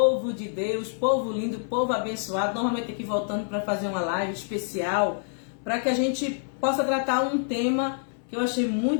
de Deus, povo lindo, povo abençoado. Normalmente aqui voltando para fazer uma live especial, para que a gente possa tratar um tema que eu achei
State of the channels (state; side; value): silent; right; digital silence